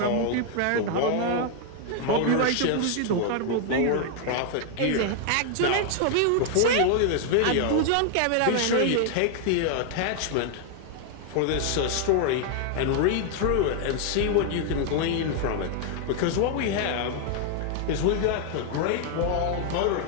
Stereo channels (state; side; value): different; both; correlation 0.00